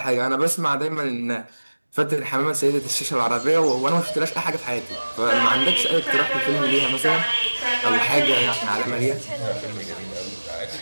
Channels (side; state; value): both; inverted; correlation -1.00